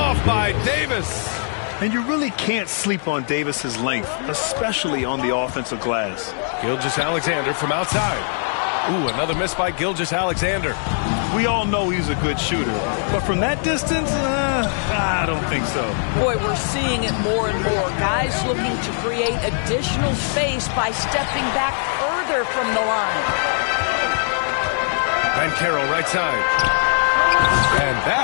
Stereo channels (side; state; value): right; silent; digital silence